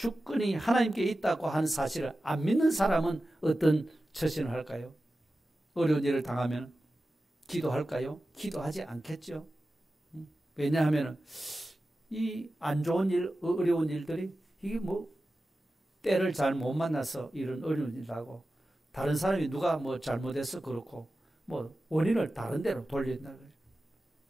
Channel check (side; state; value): both; normal; correlation 0.94